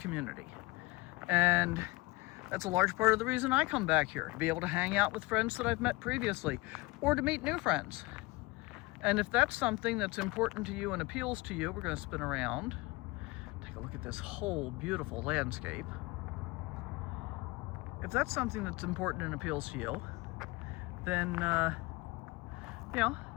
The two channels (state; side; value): quieter; right; 22.8 dB